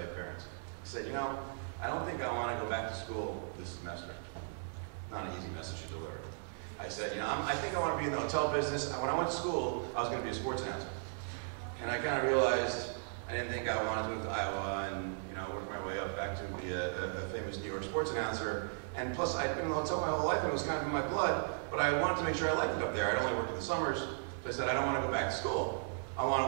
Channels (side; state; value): left; silent; 53 dB below the other